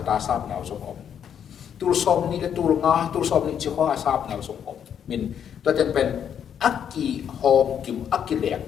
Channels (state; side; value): quieter; right; 8.6 dB